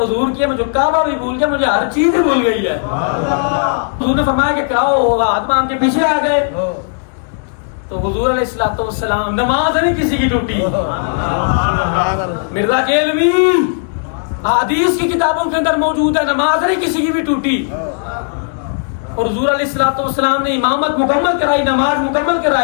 حضور کی ہے, مجھے کعبہ بھی بھول گیا, مجھے ہر چیز ہی بھول گئی ہے. حضور نے فرمایا کہ کراؤ, ہاتھ باندھ کے پیچھے آ گئے. تو حضور علیہ الصلوۃ والسلام, نماز نہیں کسی کی ٹوٹی. مرزا کیلوی حدیث کی کتابوں کے اندر موجود ہے, نماز نہیں کسی کی بھی ٹوٹی. اور حضور علیہ الصلوۃ والسلام نے امامت مکمل کرائی, نماز مکمل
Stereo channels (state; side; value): silent; right; digital silence